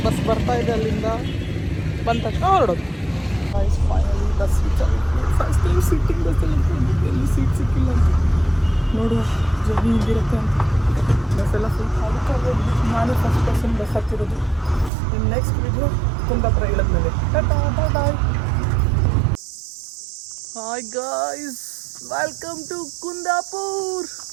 ಬಸ್ ಬರ್ತಾ ಇದೆ ಅಲ್ಲಿಂದ. ಬಂದ ತಕ್ಷಣ ಹೊರಡೋದು. ಫೈನಲಿ ಬಸ್ ರೀಚ್ ಆಗಿರ್ತೀನಿ. ಫಸ್ಟ್ ಟೈಮ್ ಸಿಟ್ಟಿಂಗ್ ಬಸ್ಸಲ್ಲಿ ಎಲ್ಲಿ ಸೀಟ್ ಸಿಕ್ಕಿಲ್ಲ ಅಂತ ನೋಡುವ ಜರ್ನಿ ಹಿಂಗಿರುತ್ತೆ ಅಂತ. ಬಸ್ಸೆಲ್ಲ ಫುಲ್ ಖಾಲಿ. ನಾನು ಫಸ್ಟ್ ಪರ್ಸನ್ ಬಸ್ ಹತ್ತಿರೋದು. ಇನ್ನು ನೆಕ್ಸ್ಟ್ ವಿಡಿಯೋ ಕುಂದಾಪುರ ಇಳಿದ್ಮೇಲೆ. Tata bye bye. Hi guys, welcome to Kundapur.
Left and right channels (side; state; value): left; drops out; at 14.9 s